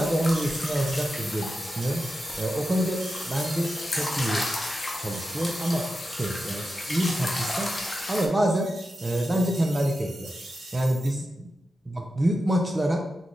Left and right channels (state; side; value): normal; both; correlation 0.91